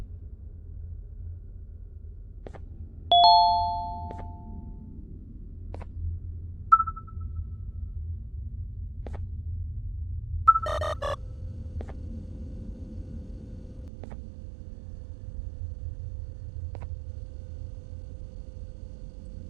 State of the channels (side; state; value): left; drops out; at 13.9 s